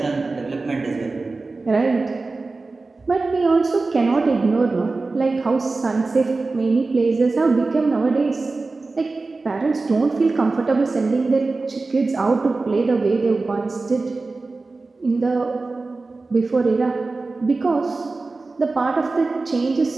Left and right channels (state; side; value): quieter; left; 3.6 dB